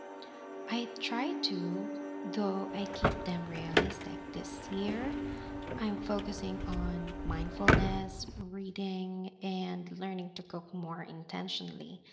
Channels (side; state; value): both; identical; correlation 1.00